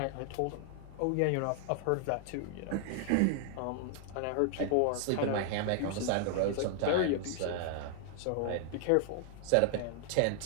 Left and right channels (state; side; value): different; both; correlation 0.00